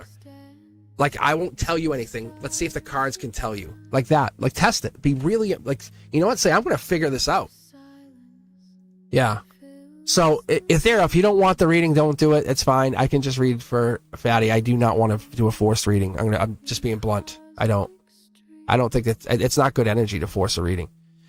Like, I won't tell you anything. Let's see if the cards can tell you. Like that. Like, test it. Be really, like, you know what? Say, I'm going to figure this out. Yeah. So, Ethereal, if you don't want the reading, don't do it. It's fine. I can just read for Fatty. I do not want to do a forced reading. I'm just being blunt. I don't. I don't think it's not good energy to force a reading.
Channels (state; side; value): identical; both; correlation 1.00